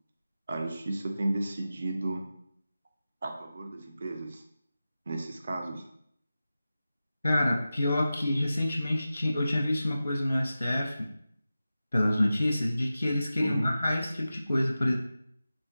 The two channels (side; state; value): both; inverted; correlation -0.94